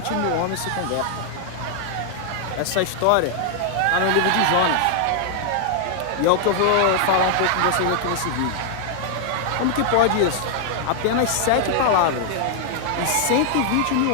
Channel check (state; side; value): different; both; correlation 0.00